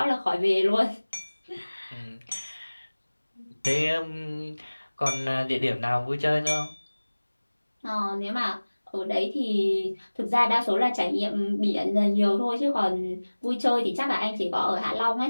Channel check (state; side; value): inverted; both; correlation -1.00